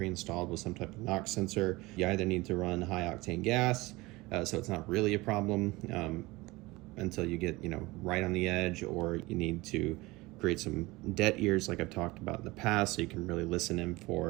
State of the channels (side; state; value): left; quieter; 21.5 dB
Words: with some type of knock sensor, you either need to run high octane gas, so it's not really a problem until you get right on the edge, or you need to create some dead ears like I've talked about in the past, so you can really listen in